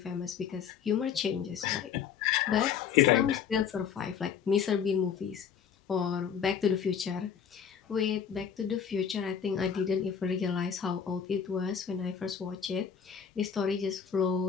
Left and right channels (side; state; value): right; quieter; 7.5 dB